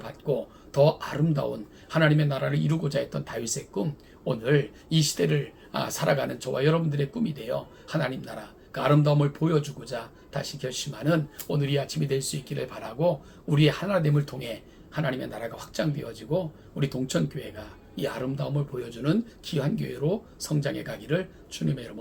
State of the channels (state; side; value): identical; both; correlation 1.00